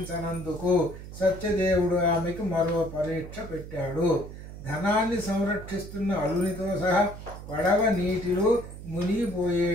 సత్యదేవుడు ఆమెకు మరో పరీక్ష పెట్టాడు. ధనాన్ని సంరక్షిస్తున్న అల్లునితో సహా పడవ నీటిలో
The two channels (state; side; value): noise; right; hum, 12 dB below the sound